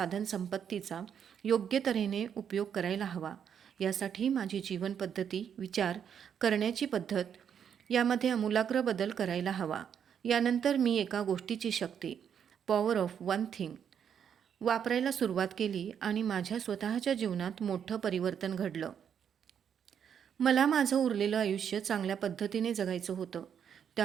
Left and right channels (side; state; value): left; quieter; 8.1 dB